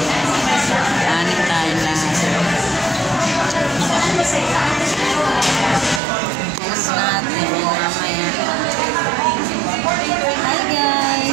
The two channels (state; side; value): drops out; left; at 6.0 s